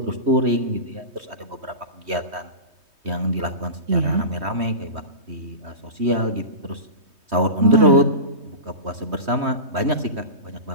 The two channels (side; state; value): left; late; 3.1 ms